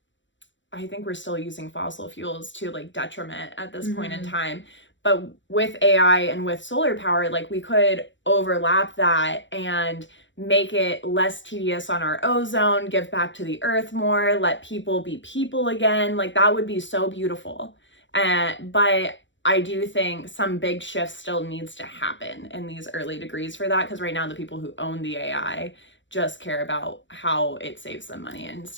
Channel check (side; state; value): right; late; 0.54 ms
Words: I think we're still using fossil fuels to like detriment at this point in time. But with AI and with solar power, like we could overlap that and make it less tedious on our ozone, give back to the earth more, let people be people again. Like that would be so beautiful. But I do think some big shift still needs to happen in these early degrees for that, because right now the people who own the AI just care about how it saves them money and